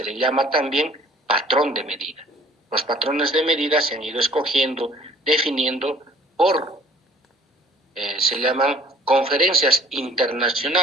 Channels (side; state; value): both; normal; correlation 0.53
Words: le llama también patrón de medida. Los patrones de medida se han ido escogiendo, definiendo por, se llaman conferencias